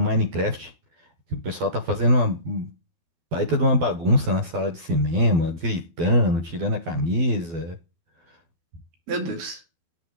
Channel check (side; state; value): left; late; 12 ms